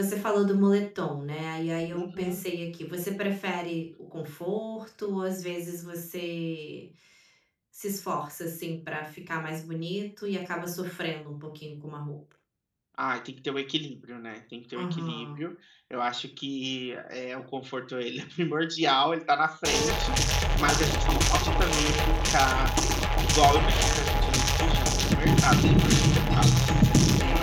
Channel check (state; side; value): identical; both; correlation 1.00